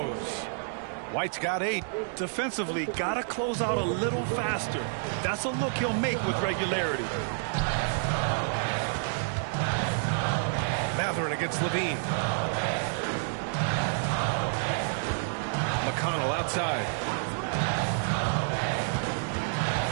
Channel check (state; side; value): silent; left; digital silence